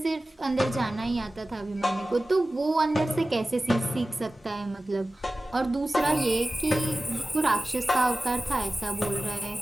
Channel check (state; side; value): normal; both; correlation 0.96